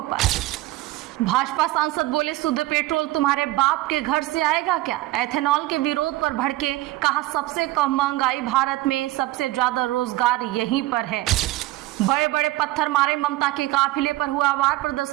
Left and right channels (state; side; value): quieter; left; 17.5 dB